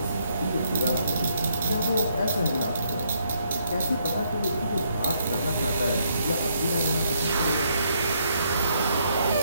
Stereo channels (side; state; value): both; inverted; correlation -0.73